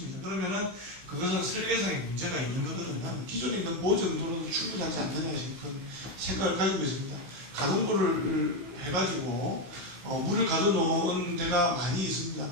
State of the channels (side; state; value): left; late; 16 ms